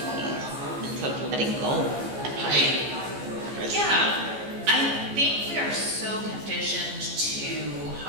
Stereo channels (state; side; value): late; left; 14 ms